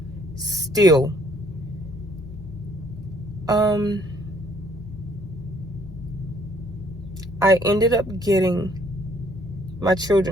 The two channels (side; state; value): both; normal; correlation 0.63